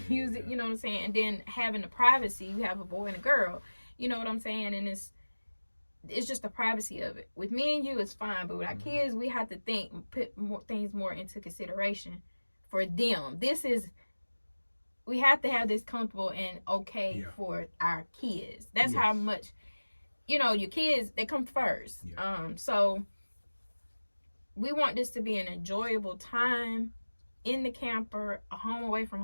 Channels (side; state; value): both; inverted; correlation -1.00